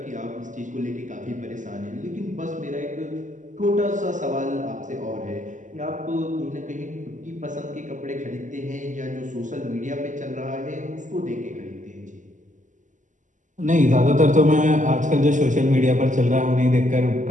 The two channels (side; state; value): left; late; 0.37 ms